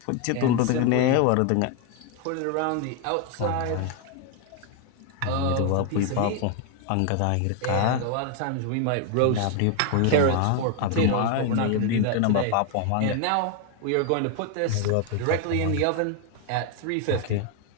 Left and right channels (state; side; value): different; both; correlation 0.01